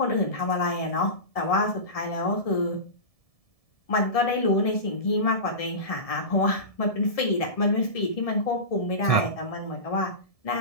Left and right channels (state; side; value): late; right; 1.7 ms